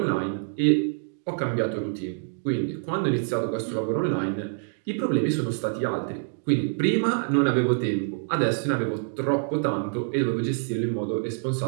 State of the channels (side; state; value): left; silent; digital silence